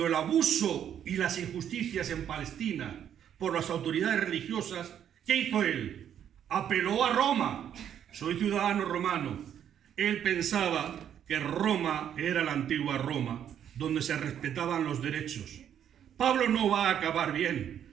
el abuso y las injusticias en Palestina por las autoridades religiosas, ¿qué hizo él? Apeló a Roma. Soy ciudadano romano. Él pensaba que Roma era la antigua Roma, donde se respetaban los derechos. Pablo no va a acabar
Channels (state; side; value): quieter; left; 9.5 dB